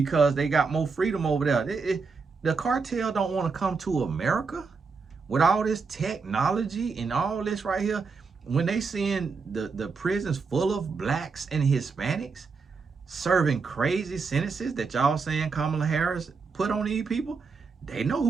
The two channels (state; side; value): quieter; left; 4.8 dB